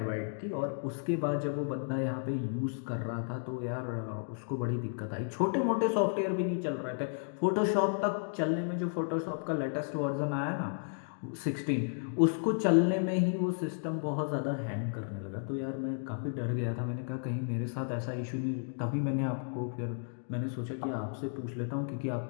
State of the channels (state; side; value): silent; right; digital silence